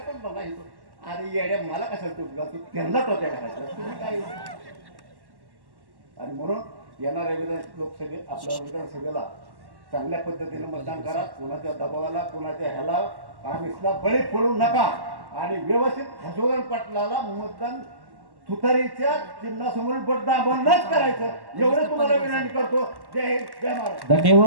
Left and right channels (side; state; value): left; late; 1.1 ms